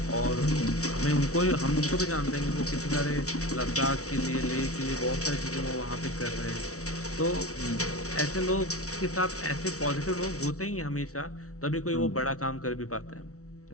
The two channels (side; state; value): right; late; 0.65 ms